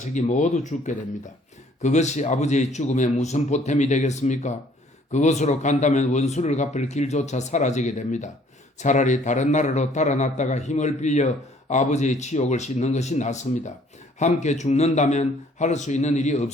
모두 죽게 됩니다. 그것이 아버지의 죽음에 무슨 보탬이 되겠습니까? 그곳으로 간다면 원수를 갚을 길조차 사라지게 됩니다. 차라리 다른 나라로 달아났다가 힘을 빌려 아버지의 치욕을 씻는 것이 낫습니다. 함께 죽는다면 할 수 있는 일이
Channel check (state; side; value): normal; both; correlation 0.60